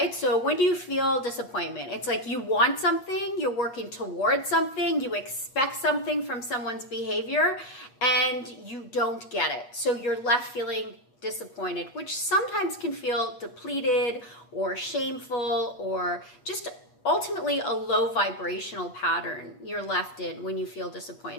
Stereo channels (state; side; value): late; right; 8.4 ms